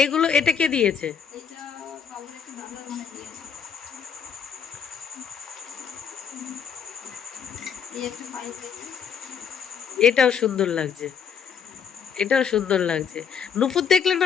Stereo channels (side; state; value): right; quieter; 7.1 dB